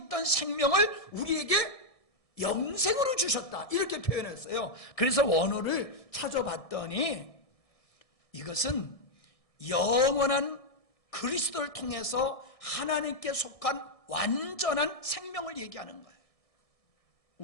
생명을 우리에게 영생으로 주셨다, 이렇게 표현했어요. 그래서 원어를 찾아봤더니 이것은 영원한 그리스도를 통해서 하나님께 속한 완전한 생명을 얘기하는 거예요.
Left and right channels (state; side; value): late; right; 1.6 ms